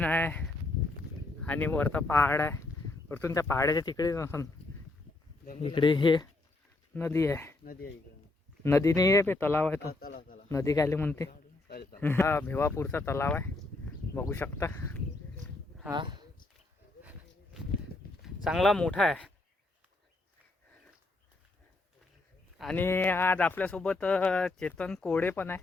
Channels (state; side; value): quieter; right; 3.0 dB